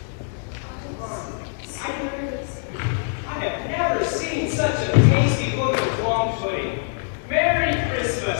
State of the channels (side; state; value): right; silent; digital silence